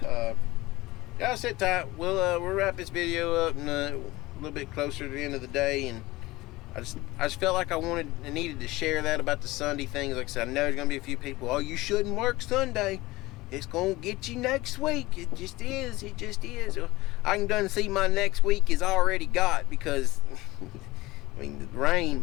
y'all sit tight. We'll wrap this video up and a little bit closer to the end of the day. And I just felt like I needed to share that about the Sunday things. Like I said, I know there's gonna be a few people, oh, you shouldn't work Sunday, it's gonna get you next week. It just is. It just is. I can done see my next week is already got, because I mean, the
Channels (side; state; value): right; quieter; 19.6 dB